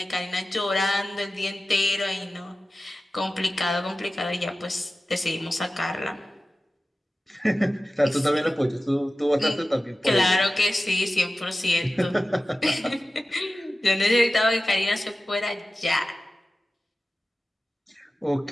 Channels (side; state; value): both; normal; correlation 0.95